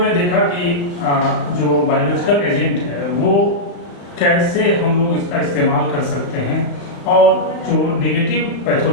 ने देखा कि जो बायोलॉजिकल एजेंट है वो कैसे हम लोग इसका इस्तेमाल कर सकते हैं, और जो नेगेटिव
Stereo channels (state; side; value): late; right; 36 ms